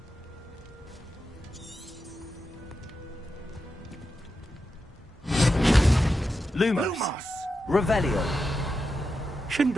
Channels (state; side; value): normal; both; correlation 0.89